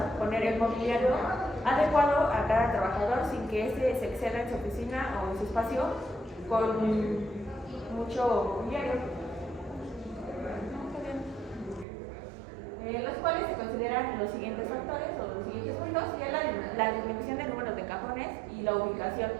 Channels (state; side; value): drops out; left; at 11.9 s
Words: poner el mobiliario adecuado a cada trabajador sin que éste se exceda en su oficina o en su espacio con mucho mobiliario. Los cuales se consideran los siguientes factores o los siguientes puntos, que es la disminución del número de cajones y la ubicación,